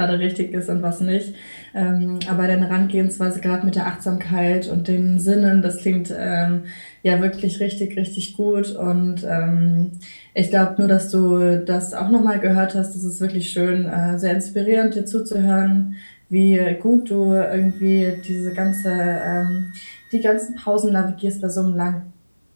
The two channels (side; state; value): both; inverted; correlation -1.00